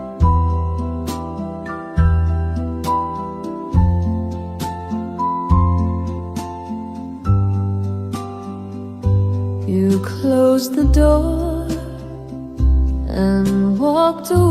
You closed the door and walked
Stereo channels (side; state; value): both; identical; correlation 1.00